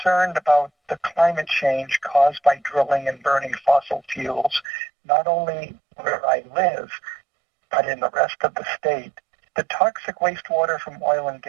about the climate change caused by drilling and burning fossil fuels, not only where I live, but in the rest of the state. The toxic wastewater from oil and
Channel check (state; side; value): drops out; left; at 4.7 s